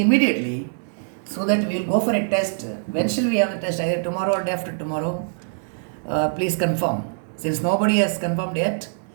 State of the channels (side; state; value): left; silent; digital silence